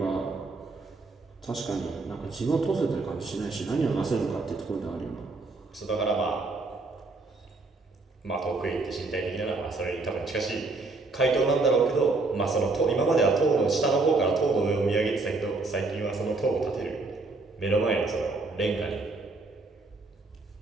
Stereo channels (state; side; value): quieter; left; 3.5 dB